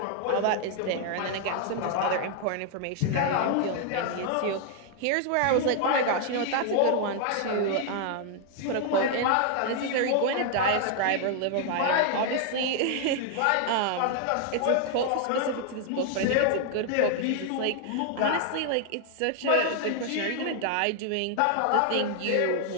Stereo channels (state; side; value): different; both; correlation 0.00